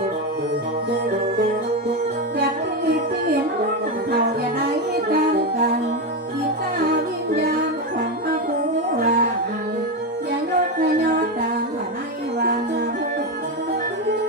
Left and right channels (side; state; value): both; normal; correlation 0.12